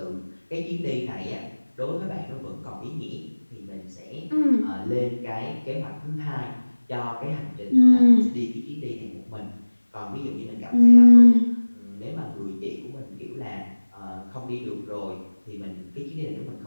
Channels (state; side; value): inverted; both; correlation -1.00